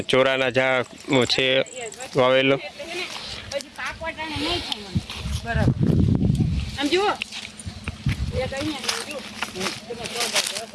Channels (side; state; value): both; identical; correlation 1.00